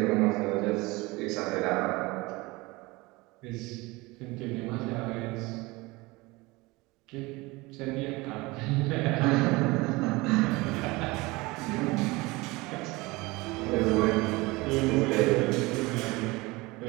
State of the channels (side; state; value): left; quieter; 22.8 dB